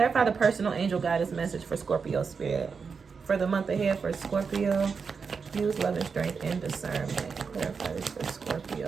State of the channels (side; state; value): left; quieter; 5.5 dB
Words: the personal angel guidance message for Scorpio spirit. For the month ahead for Scorpio. Use loving strength and discernment. Clarify this for